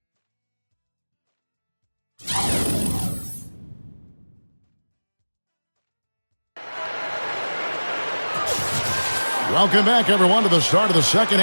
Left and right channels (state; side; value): inverted; both; correlation -1.00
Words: Welcome back, everyone, to the start of the second